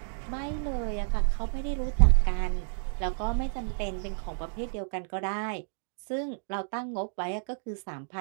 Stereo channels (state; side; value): silent; left; digital silence